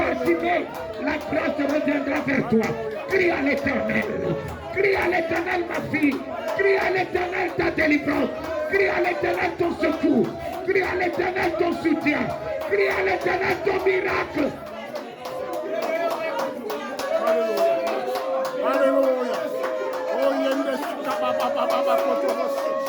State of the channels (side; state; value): both; identical; correlation 1.00